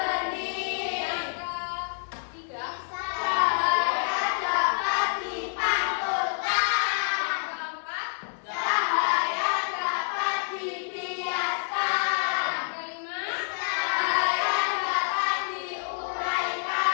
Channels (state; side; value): silent; right; digital silence